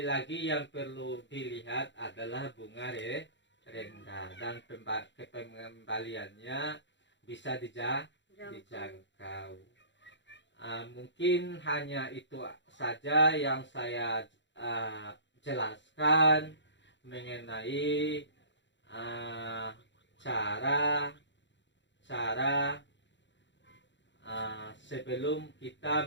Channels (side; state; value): right; late; 0.53 ms